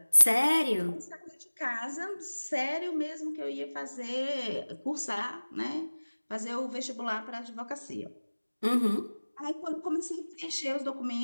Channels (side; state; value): both; inverted; correlation -1.00